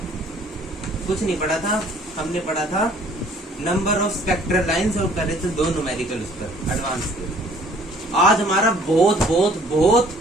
कुछ नहीं पढ़ा था। हमने पढ़ा था नंबर ऑफ स्पेक्ट्रल लाइंस और करे थे 2 न्यूमेरिकल उस पर एडवांस के। आज हमारा बहुत बहुत बहुत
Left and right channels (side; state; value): both; normal; correlation 0.57